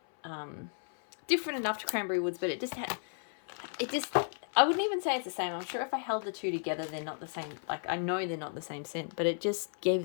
different enough to Cranberry Woods, but I wouldn't even say it's the same. I'm sure if I held the two together, they're not the same. Like, I know they're not the same scent, but it just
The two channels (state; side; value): silent; right; 55 dB below the other